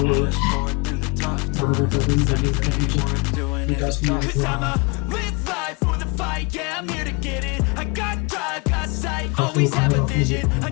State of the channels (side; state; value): right; quieter; 29.7 dB